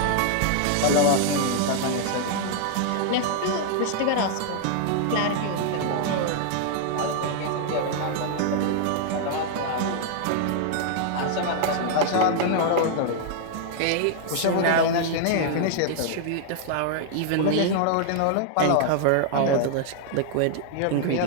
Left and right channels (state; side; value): different; both; correlation 0.00